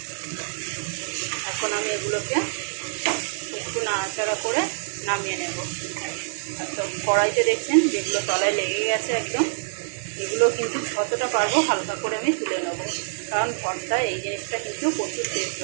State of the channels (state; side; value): silent; left; digital silence